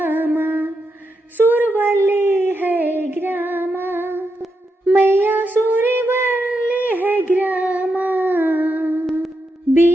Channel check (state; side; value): normal; both; correlation 0.84